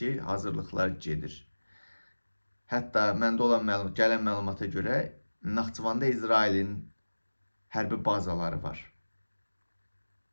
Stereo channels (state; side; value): inverted; both; correlation -1.00